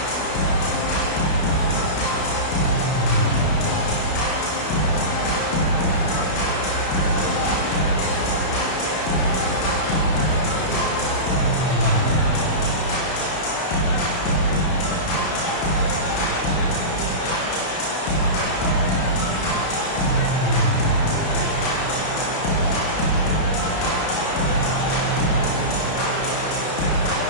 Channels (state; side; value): late; right; 32 ms